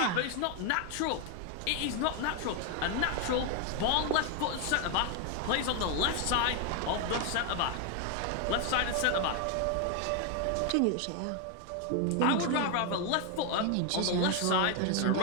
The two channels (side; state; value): both; different; correlation 0.01